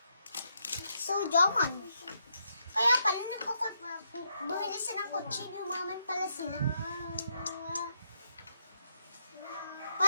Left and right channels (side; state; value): both; inverted; correlation -0.78